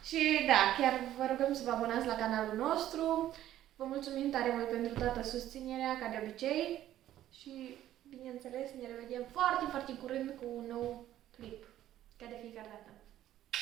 Și da, chiar vă rugăm să vă abonați la canalul nostru. Vă mulțumim tare mult pentru toată susținerea, ca de obicei. Și, bineînțeles, ne revedem foarte, foarte curând cu un nou clip. Ca de fiecare dată.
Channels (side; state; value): left; quieter; 12.7 dB